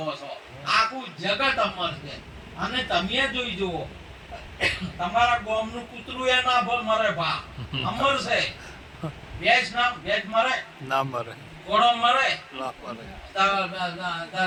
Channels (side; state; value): both; identical; correlation 1.00